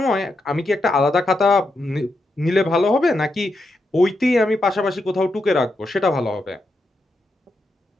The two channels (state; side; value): normal; both; correlation 0.84